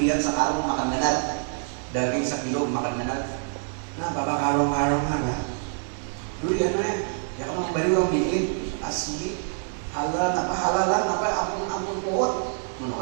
sekarung makan benar daging sekilo makan benar. Nah, bapak karung-karung naga. Duriannya, ya kamu beri orang bikin asli halalan apa ampun pohon.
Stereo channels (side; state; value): left; silent; 57 dB below the other